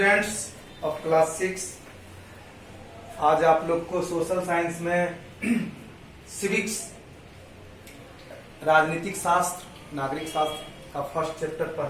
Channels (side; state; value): both; identical; correlation 1.00